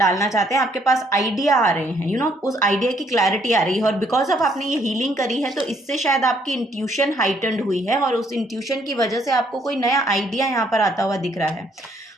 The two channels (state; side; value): normal; both; correlation 0.68